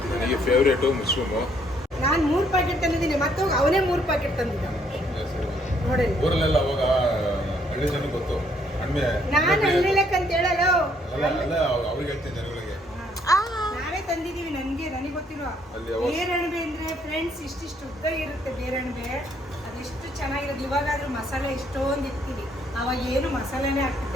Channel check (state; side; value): normal; both; correlation 0.67